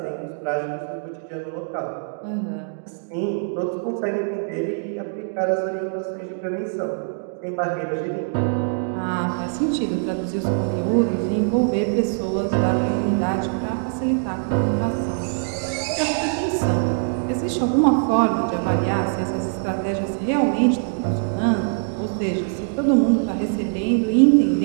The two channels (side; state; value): left; silent; 63 dB below the other